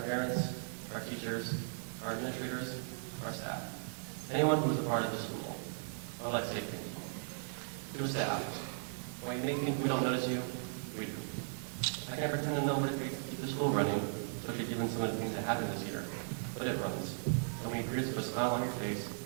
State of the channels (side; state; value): left; silent; 53 dB below the other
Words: our teachers, our administrators, our staff, anyone who is a part of this school. I would like to say thank you. To the staff, while you may think we don't notice you, we do. I can't pretend to know what it takes to keep the school running, especially given some of the things that happened this year, but it runs. And when you greet us with a smile on your face,